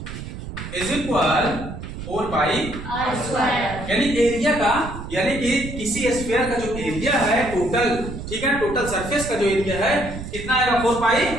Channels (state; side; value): noise; right; rumble, 9 dB below the sound